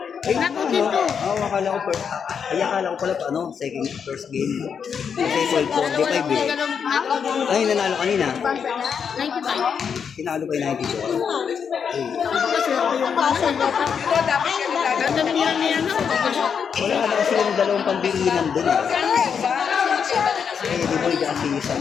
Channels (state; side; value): quieter; right; 6.9 dB